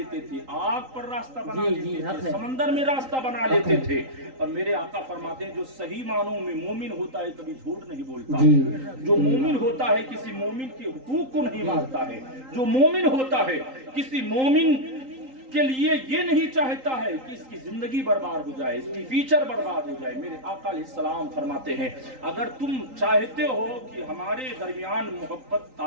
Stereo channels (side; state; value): left; late; 3.8 ms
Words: تھے، آگ پر راستہ بنا لیتے تھے، سمندر میں راستہ بنا لیتے تھے۔ اور میرے آقا فرماتے ہیں جو صحیح معنوں میں مومن ہوتا ہے کبھی جھوٹ نہیں بولتا، جو مومن ہوتا ہے کسی مومن کے حقوق کو نہیں مانتا ہے، جو مومن ہوتا ہے کسی مومن کے لیے یہ نہیں چاہتا ہے کہ اس کی زندگی برباد ہو جائے، اس کی فیوچر برباد ہو جائے۔ میرے آقا علیہ السلام فرماتے ہیں اگر تم چاہتے ہو کہ ہمارے درمیان محبت